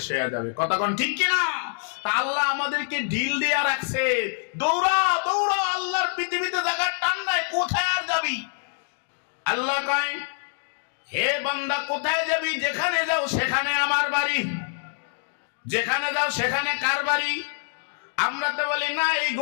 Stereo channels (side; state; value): right; silent; digital silence